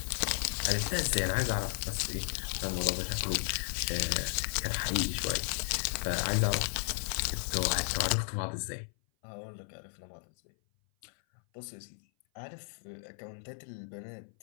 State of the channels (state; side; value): silent; right; 55 dB below the other